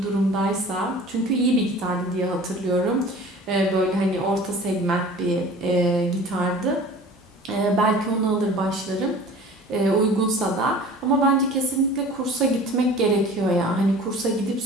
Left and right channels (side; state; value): both; normal; correlation 0.44